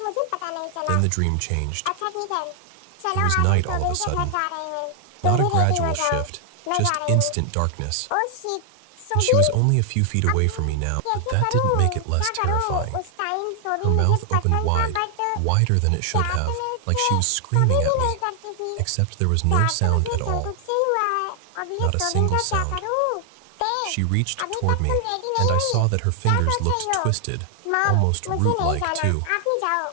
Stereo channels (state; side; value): different; both; correlation 0.00